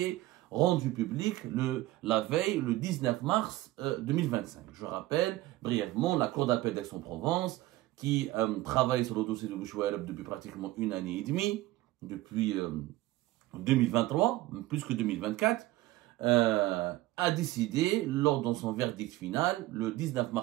rendue publique la veille, le 19 mars 2025. Je rappelle brièvement la Cour d'appel d'Aix-en-Provence qui travaille sur le dossier de Bouchouareb depuis pratiquement une année et demie, depuis 2023, plus que 2024, a décidé, lors de son verdict final, le 19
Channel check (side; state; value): left; quieter; 17.2 dB